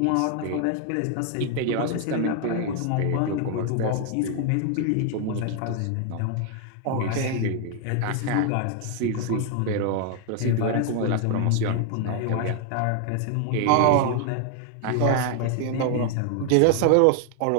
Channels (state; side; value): different; both; correlation 0.00